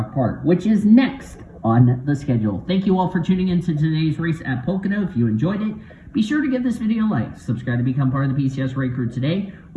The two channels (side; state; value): both; identical; correlation 1.00